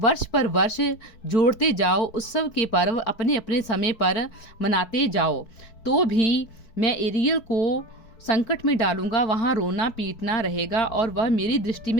पर वर्ष जोड़ते जाओ, उत्सव के पर्व अपने अपने समय पर मनाते जाओ। तो भी मैं एरियल को संकट में डालूंगा, वहां रोना पीटना रहेगा और वह मेरी दृष्टि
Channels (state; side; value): late; right; 4.6 ms